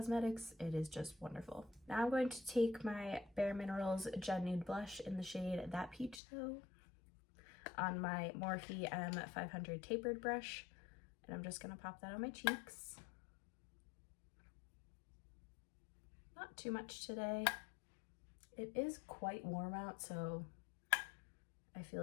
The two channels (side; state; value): right; drops out; at 6.2 s